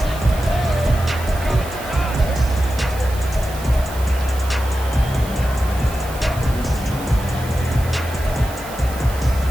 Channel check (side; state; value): right; noise; hiss, 16 dB below the sound